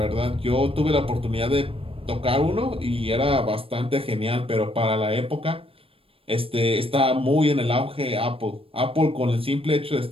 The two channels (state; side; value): late; left; 0.27 ms